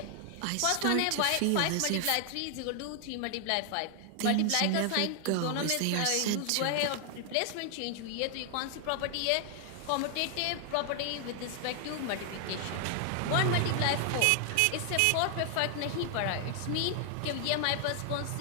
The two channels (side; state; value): both; different; correlation 0.00